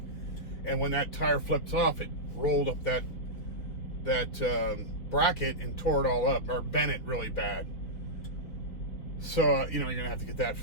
And when that tire flipped off, it rolled up that bracket and tore it all up, or bent it really bad. So, you know, you're going to have to get that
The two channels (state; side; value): late; right; 4.7 ms